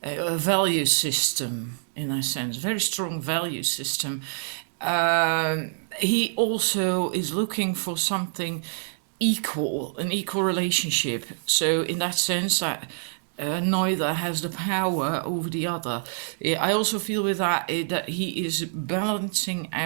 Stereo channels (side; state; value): left; silent; digital silence